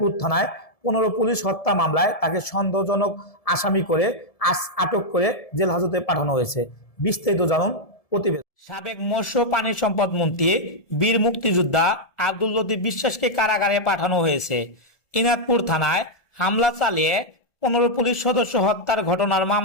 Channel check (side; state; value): right; late; 1.7 ms